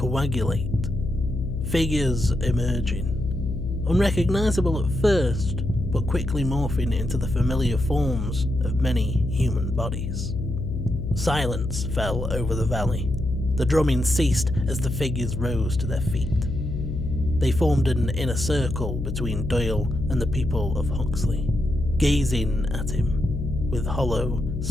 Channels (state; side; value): noise; left; hum, 4 dB below the sound